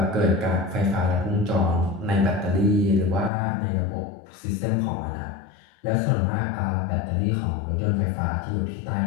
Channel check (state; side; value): drops out; right; at 3.3 s